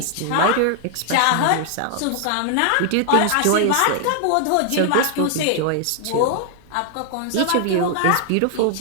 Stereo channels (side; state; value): both; different; correlation 0.00